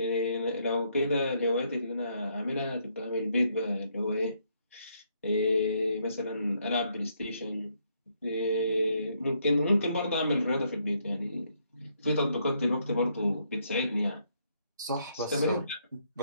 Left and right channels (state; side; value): inverted; both; correlation -0.73